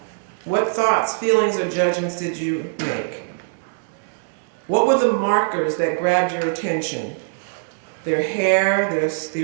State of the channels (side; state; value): left; silent; digital silence